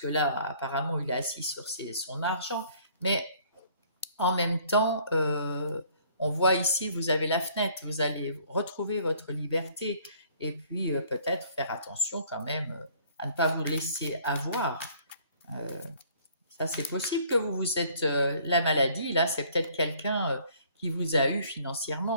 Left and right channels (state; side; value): inverted; both; correlation -0.58